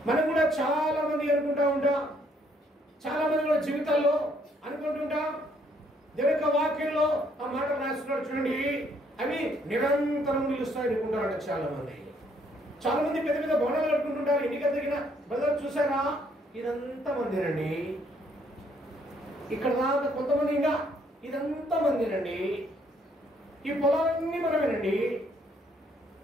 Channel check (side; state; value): both; normal; correlation 0.68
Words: మనం కూడా చాలా మంది అనుకుంటా ఉంటాం, చాలా మంది కూడా జీవితాల్లో అనుకుంటుంటాం. దేవుని యొక్క వాక్యంలో ఆ మాట రాస్తున్నాడు చూడండి, అవి నిరంతరం నిలుస్తాయి అనుకుంటారంట చాలా మంది. చాలా మంది పెద్ద పెద్ద భవనాలు కట్టుకుంటుంటారు. ఎన్నికల దగ్గర బ్రదర్ చూసారా, ఇదంతా మందిరండి. ఇక్కడ దాకా కొంతమంది, ఇంకా ఇదంతా మందిరండి. ఈ పొలాలన్నీ మనమేనండి.